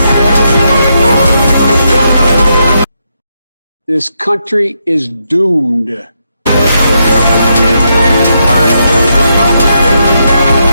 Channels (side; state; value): both; inverted; correlation -0.80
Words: This country is doomed. The